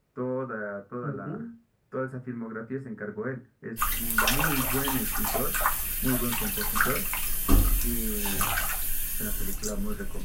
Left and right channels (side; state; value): both; identical; correlation 1.00